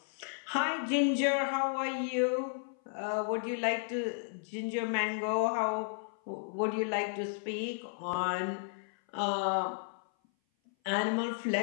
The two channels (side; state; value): right; silent; 56 dB below the other